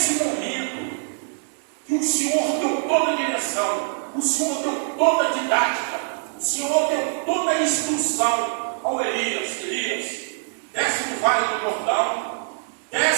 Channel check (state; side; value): silent; left; 63 dB below the other